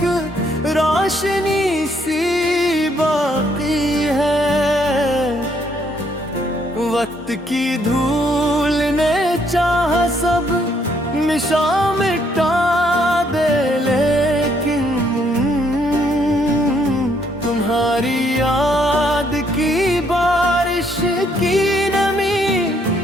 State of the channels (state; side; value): normal; both; correlation 0.70